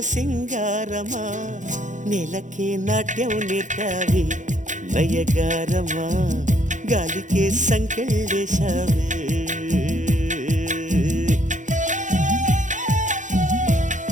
సింగారమా నేలకే నాట్యం నేర్తావి నయగారమా గాలికే సంకెళ్ళేశావే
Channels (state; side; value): late; left; 0.36 ms